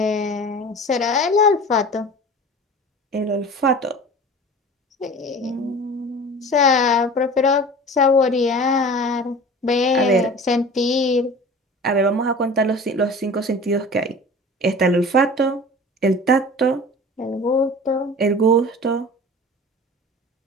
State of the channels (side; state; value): both; normal; correlation 0.39